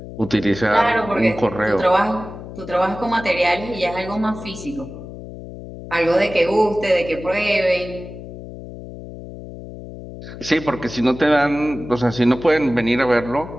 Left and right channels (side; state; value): left; noise; hum, 13 dB below the sound